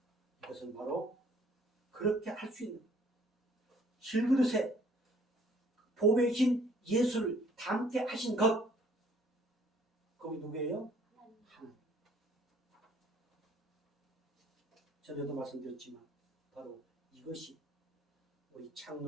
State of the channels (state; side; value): normal; both; correlation 0.59